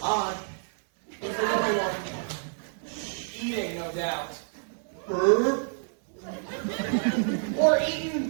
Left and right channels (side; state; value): left; silent; 59 dB below the other